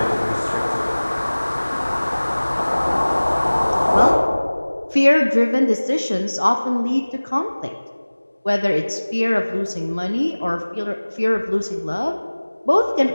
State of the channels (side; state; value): both; inverted; correlation -1.00